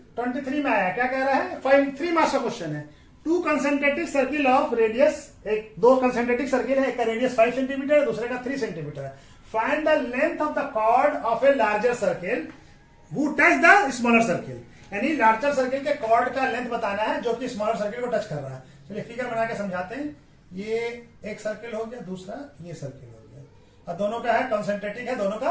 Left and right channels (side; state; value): both; identical; correlation 1.00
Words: में आया। क्या कह रहा है, 3 मार्क्स का क्वेश्चन है। 2 कंसेंट्रिक सर्किल ऑफ रेडियस, दो कंसेंट्रिक सर्किल है, एक का रेडियस 5 सेंटीमीटर है, दूसरे का 3 सेंटीमीटर है। Find the length of the chord of a larger circle who touch the smaller circle। यानी लार्जर सर्किल के कॉर्ड का लेंथ बताना है जो कि स्मॉलर सर्किल को टच कर रहा है। चलिए फिगर बना के समझाते हैं। ये एक सर्किल हो गया, दूसरा ये सर्किल हो गया, और दोनों का है कंसेंट्रेटिक है, दोनों